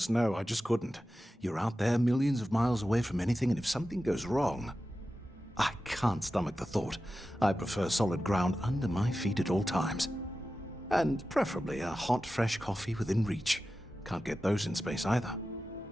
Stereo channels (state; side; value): normal; both; correlation 0.93